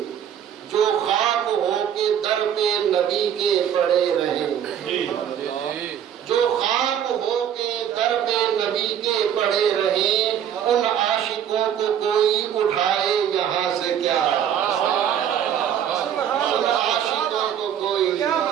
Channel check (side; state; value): left; quieter; 9.4 dB